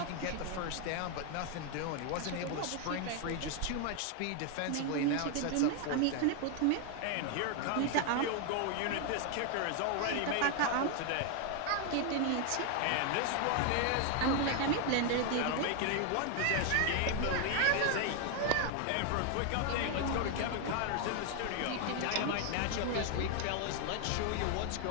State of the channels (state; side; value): different; both; correlation 0.01